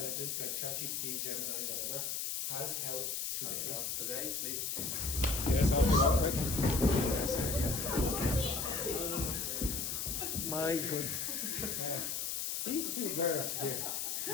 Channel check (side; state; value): left; noise; hiss, 1 dB below the sound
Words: like ChatGPT, Gemini, whatever, has helped today. Today, please change. Yes, I'll be quick. Yes. My goodness. These two girls here,